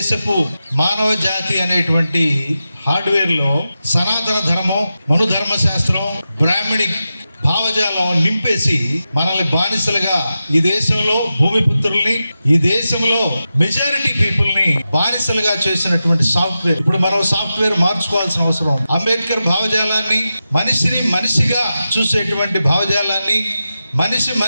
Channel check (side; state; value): both; inverted; correlation -0.91